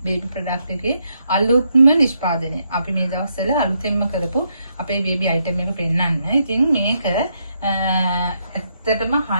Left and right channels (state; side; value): inverted; both; correlation -0.78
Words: product එකේ අලුත්ම නිෂ්පාදනය. අපි මේ දවස්වල අලුතෙන්ම කරපු අපේ baby item එක පෙන්නන්න. ඉතින් මේක ඇත්තටම